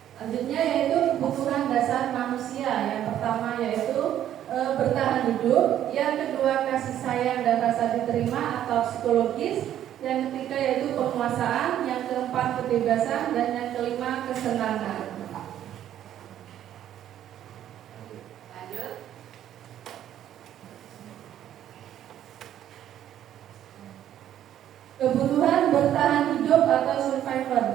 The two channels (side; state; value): left; quieter; 11.2 dB